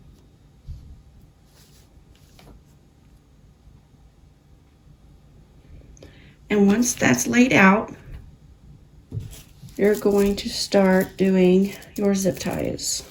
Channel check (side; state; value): both; identical; correlation 1.00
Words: And once that's laid out, you're going to start doing your zip ties.